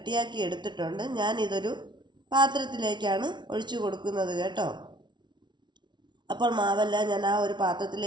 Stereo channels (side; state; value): left; late; 0.22 ms